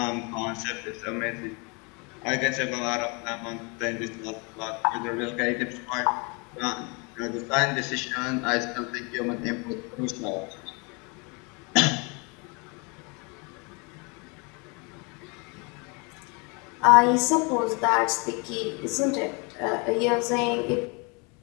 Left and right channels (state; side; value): quieter; right; 31.3 dB